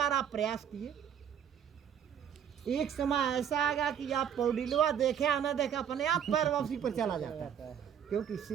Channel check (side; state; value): left; quieter; 8.7 dB